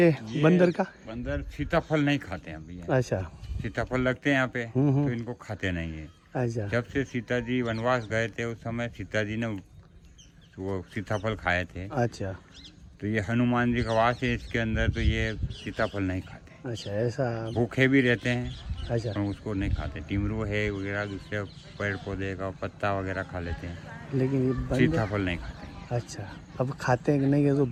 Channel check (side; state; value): both; identical; correlation 1.00